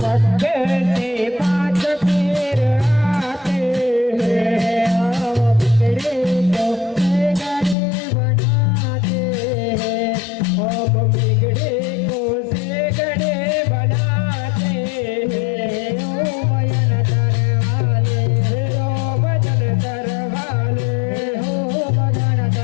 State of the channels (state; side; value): drops out; right; at 7.8 s